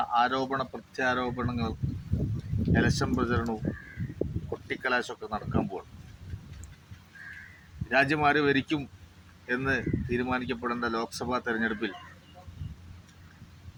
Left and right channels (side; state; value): both; identical; correlation 1.00